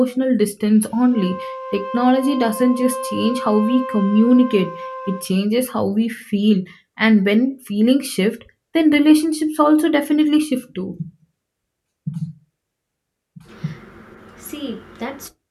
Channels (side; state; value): both; identical; correlation 1.00